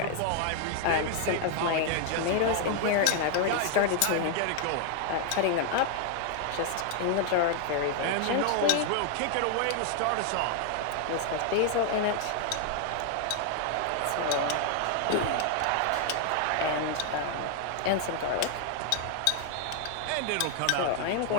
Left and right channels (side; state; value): both; different; correlation 0.00